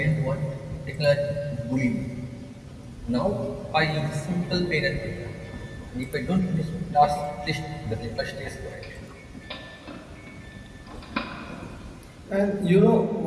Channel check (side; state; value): both; identical; correlation 1.00